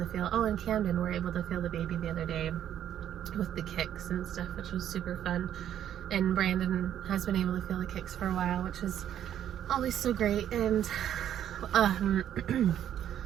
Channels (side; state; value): left; quieter; 10.5 dB